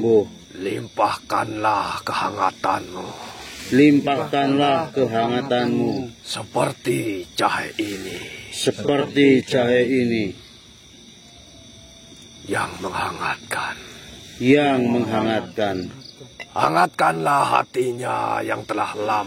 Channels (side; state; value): both; identical; correlation 1.00